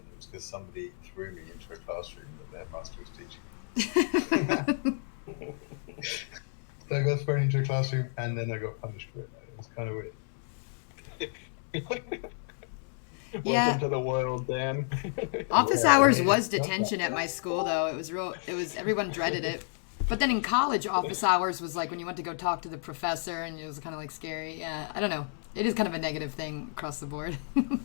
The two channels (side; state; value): right; silent; 56 dB below the other